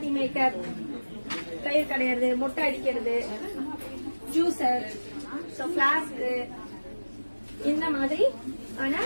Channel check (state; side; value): inverted; both; correlation -1.00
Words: மேக்கர், தயிர் கடையிறது, முட்டை அடிக்கிறது, ஜூசர், பிளாஸ்க், இந்த மாதிரி ஆனா